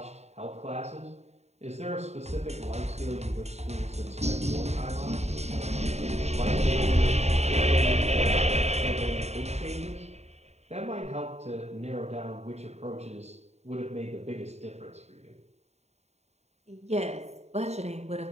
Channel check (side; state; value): left; late; 0.32 ms